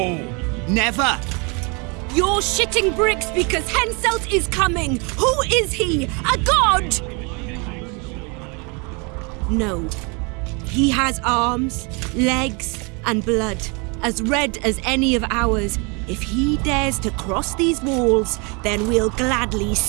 Never! You're shitting bricks because Henselt is coming! Who is he? A god? No. He has arms, legs, and blood, as red as any of ours. If he dares to cross these walls, then we'll gladly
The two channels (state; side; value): quieter; left; 31.7 dB